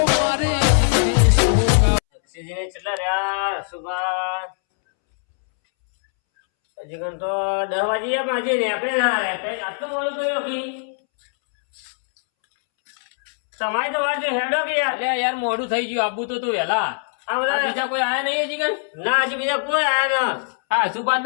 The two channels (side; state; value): right; silent; 65 dB below the other